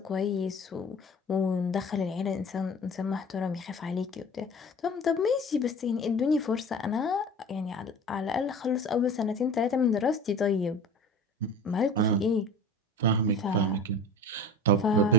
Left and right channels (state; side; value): normal; both; correlation 0.39